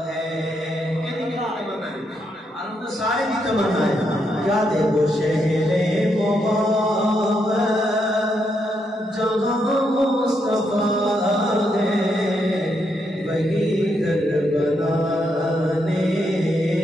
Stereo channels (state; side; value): normal; both; correlation 0.79